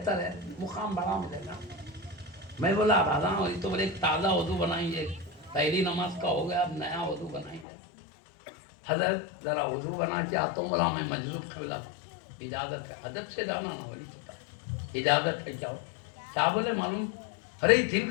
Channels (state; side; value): drops out; right; at 7.7 s